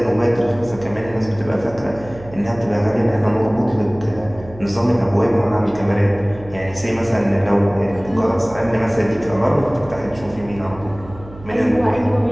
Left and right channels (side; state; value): right; noise; hum, 18 dB below the sound